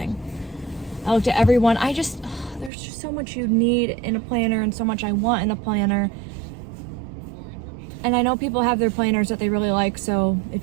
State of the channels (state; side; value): drops out; left; at 2.7 s